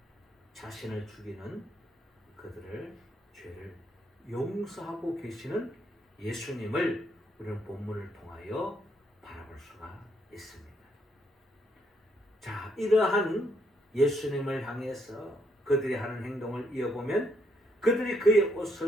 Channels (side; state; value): both; normal; correlation 0.73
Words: 자신을 죽이는 그들을 죄를 용서하고 계시는 예수님을 우리는 본문을 통하여 바라볼 수가 있습니다. 자, 이러한 예수님을 향해서 그들이 하는 행동을 이어보면 그들이 그의